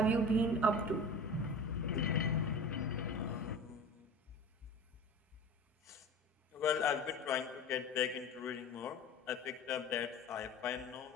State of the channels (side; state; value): both; normal; correlation 0.36